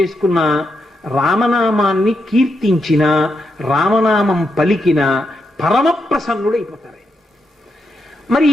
రామనామాన్ని కీర్తించిన, రామనామం పలికిన పరమ ప్రసన్నుడైపోతారు. మరి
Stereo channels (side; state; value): both; normal; correlation 0.83